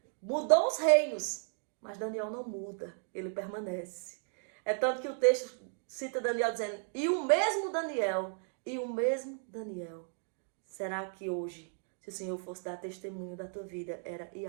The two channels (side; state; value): left; silent; 55 dB below the other